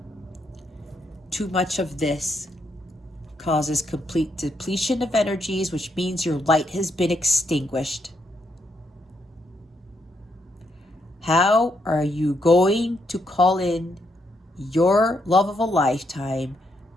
Too much of this causes complete depletion of energies, which means your light has been extinguished. How are you going to call in your love of a lifetime,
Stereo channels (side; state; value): both; normal; correlation 0.77